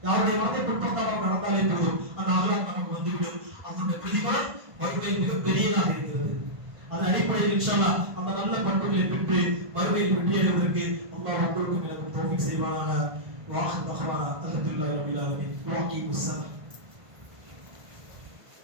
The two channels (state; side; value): late; left; 1.5 ms